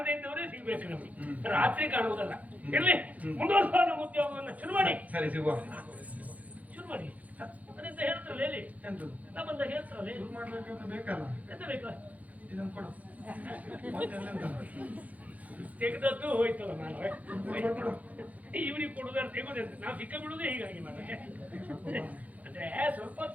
ಇದ್ದವರೇ ಸಿಗ್ಬೇಕು ನಮಗೆ, ರಾತ್ರಿ ಕಾಣುವುದಲ್ಲ. ಇರ್ಲಿ, ಮುಂದುವರ್ಸುವ ನಮ್ಮ ಉದ್ಯೋಗವನ್ನು ಶುರು ಮಾಡಿ. ಸರಿ, ಸಿಗುವ. ಶುರು ಮಾಡಿ. ಅದೆಂತ ಹೇಳ್ತಾರಲ್ಲ ಹೇಳಿ, ನಾ ಬಂದಾಗ ಹೇಳ್ತಾರಲ್ಲ ಬೇಕಲ್ಲ. ಎಂತ ಬೇಕು? ಇದನ್ನು ಕೊಡು. ತೆಗೆದದ್ದು ಹೋಯ್ತಲ್ಲ. ನಾನು ಇವ್ರಿಗೆ ಕೊಡುದಾರೆ ತೆಗೋದಂತ ನಾವು ಸಿಕ್ಕ ಬಿಡುವುದೇ ಹೀಗಾಗಿ ಮಾಡ. ಅಂದ್ರೆ ಸ್ವಲ್ಪ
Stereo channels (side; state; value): left; late; 0.074 ms